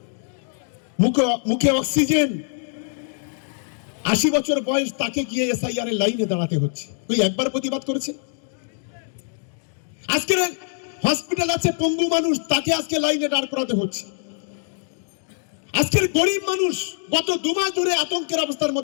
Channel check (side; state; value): right; silent; digital silence